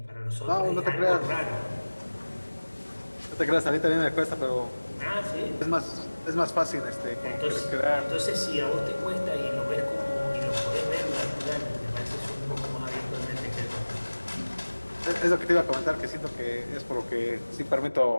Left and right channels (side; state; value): both; inverted; correlation -1.00